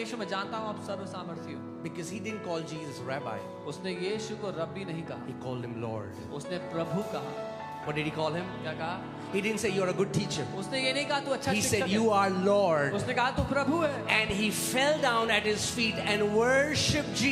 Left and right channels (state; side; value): identical; both; correlation 1.00